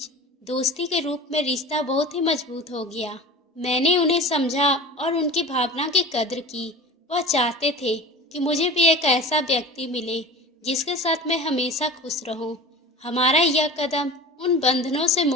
दोस्ती के रूप में रिश्ता बहुत ही मजबूत हो गया। मैंने उन्हें समझा और उनकी भावना की कद्र की। वह चाहते थे कि मुझे भी एक ऐसा व्यक्ति मिले जिसके साथ मैं हमेशा खुश रहूं। हमारा यह कदम उन बंधनों से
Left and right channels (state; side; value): normal; both; correlation 0.36